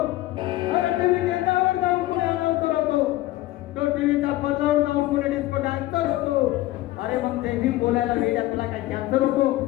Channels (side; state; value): right; quieter; 16.8 dB